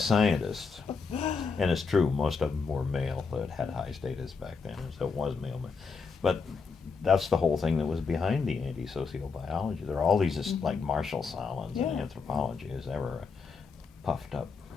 And it's true, most of them were male that had high status back then, so it was male. But that's the whole thing that was behind the anti-sociobiology. There are all these, like Marshall Salmons in anthropology is ever a puffed up,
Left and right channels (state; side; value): quieter; right; 5.0 dB